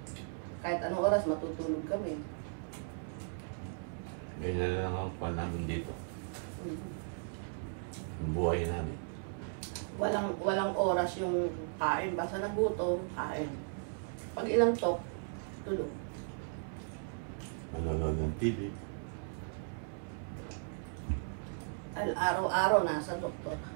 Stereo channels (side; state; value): left; silent; 53 dB below the other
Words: Kahit anong oras, matutulog kami. Ganyan lang ang pan namin dito. Ang buhay namin. Walang oras yung kain. Basta nagutom, kain. Pag ilang tok, tulog. Manonood ng TV. Araw-araw nasa doktor.